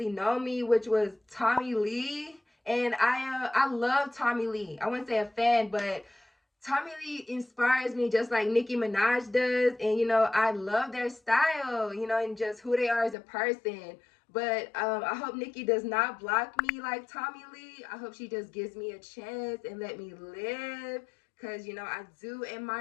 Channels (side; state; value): right; drops out; at 13.2 s